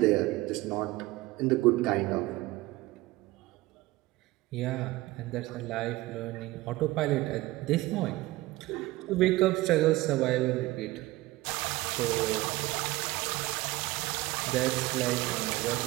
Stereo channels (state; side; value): quieter; left; 19.1 dB